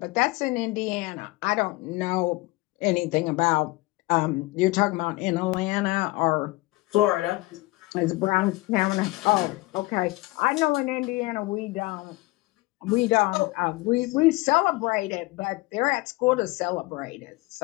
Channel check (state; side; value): quieter; right; 22.0 dB